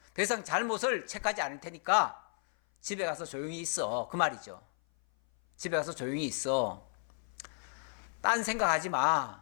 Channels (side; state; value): right; silent; 55 dB below the other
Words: 더 이상 잘못을 책하지 않을 테니까 집에 가서 조용히 있어. 그 말이죠. 집에 가서 조용히 있어. 딴 생각하지